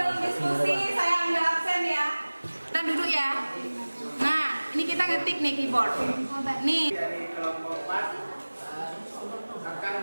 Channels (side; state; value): both; inverted; correlation -1.00